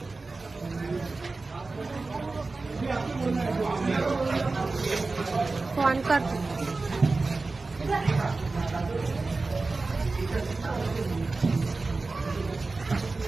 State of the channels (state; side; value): quieter; left; 3.6 dB